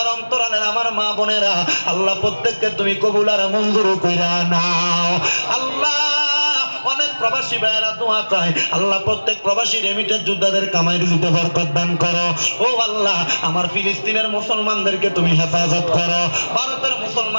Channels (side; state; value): both; inverted; correlation -1.00